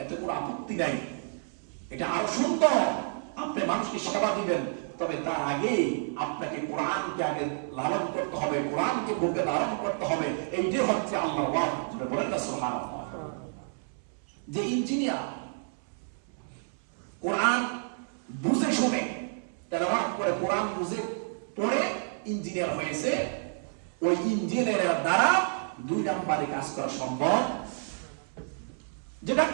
এতে কোনো আপত্তি নাই, এটা আরো সুন্দর। আপনি মানুষকে সেবা দিবেন, তবে তার আগে আপনাকে কোরআনকে আগে লালন করতে হবে, কোরআনকে বুকে ধারণ করতে হবে। এইটাই হচ্ছে আল্লাহর ওয়াহী। বলেন না সুবহানাল্লাহ। যে ইঞ্জিনিয়ার কোরআন বুঝে শুনে তেলাওয়াত করে, কোরআন বুঝে পড়ে ইঞ্জিনিয়ার হয়েছে, ওই ইঞ্জিনিয়ারের দ্বারা 2 নম্বরে কাজ করা সম্ভব। যে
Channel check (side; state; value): left; silent; 58 dB below the other